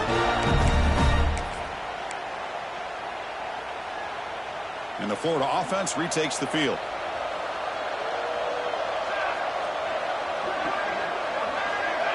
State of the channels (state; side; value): identical; both; correlation 1.00